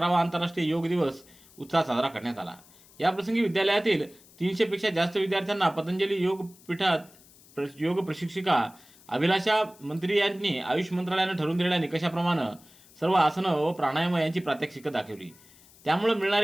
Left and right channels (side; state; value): left; noise; hiss, 25 dB below the sound